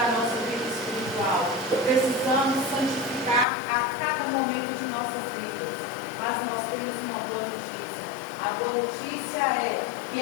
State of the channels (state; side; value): drops out; right; at 3.5 s